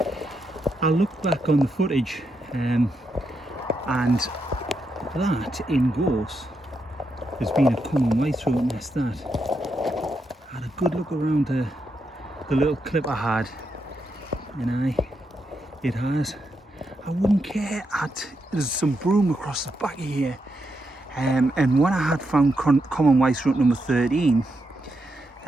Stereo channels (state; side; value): normal; both; correlation 0.83